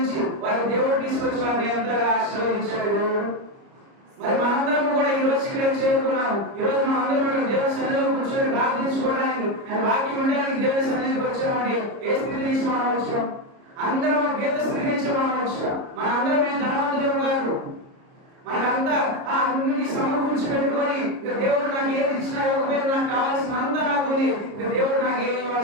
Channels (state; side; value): late; left; 30 ms